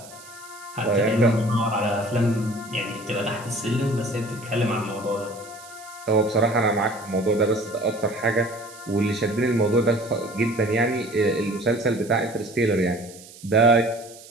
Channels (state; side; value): noise; right; hiss, 19 dB below the sound